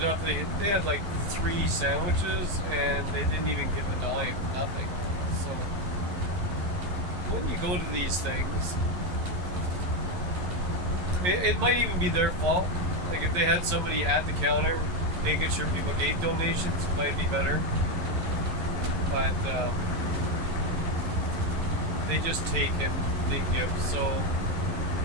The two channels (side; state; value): left; late; 11 ms